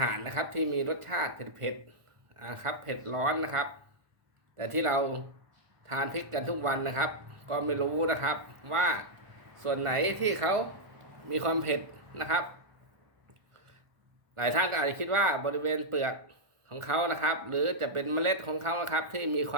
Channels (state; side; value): late; left; 1.4 ms